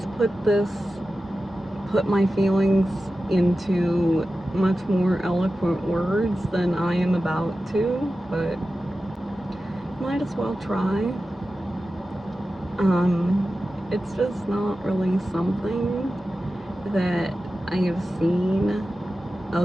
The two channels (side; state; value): both; normal; correlation 0.94